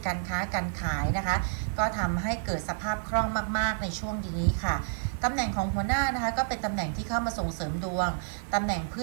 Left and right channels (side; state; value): left; silent; digital silence